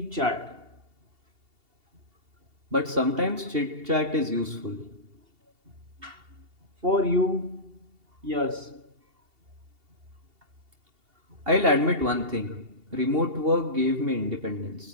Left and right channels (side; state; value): left; late; 2.8 ms